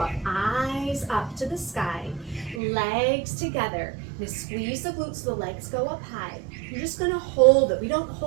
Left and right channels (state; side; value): drops out; left; at 2.6 s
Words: Eyes up to the sky. Legs together. Now squeeze the glutes so the legs go up high. You're just gonna hold it. We don't